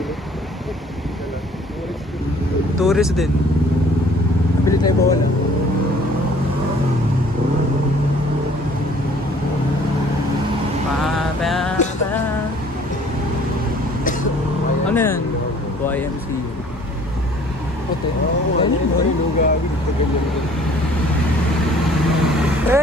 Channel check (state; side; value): normal; both; correlation 0.54